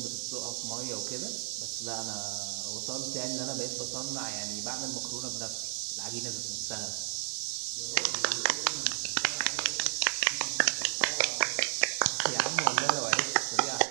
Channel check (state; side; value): silent; left; 56 dB below the other